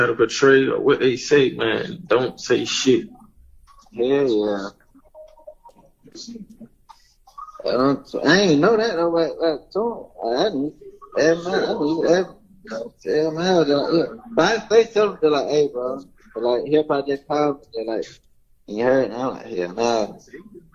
to portray or what they say, man. Don't say shit. Yeah. I ain't know that though. I didn't. Tell him how. But I tell him, they're like, hey, bro. But like, he'll probably just call me. They're like, you heard? And I'm like, yeah, nah.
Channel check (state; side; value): identical; both; correlation 1.00